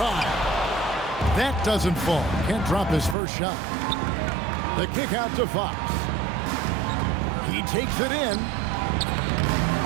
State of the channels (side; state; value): left; drops out; at 3.2 s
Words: That doesn't fall. Can't drop his first shot. The kick out to Fox. He takes it in.